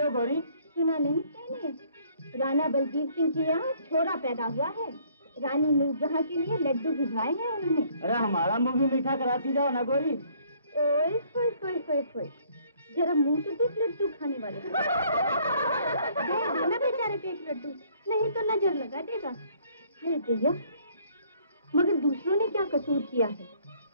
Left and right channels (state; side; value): inverted; both; correlation -0.62